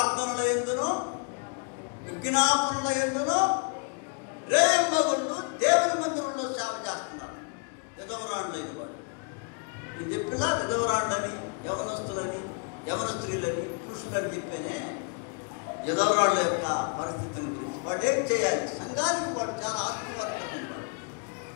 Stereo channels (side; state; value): right; quieter; 37.0 dB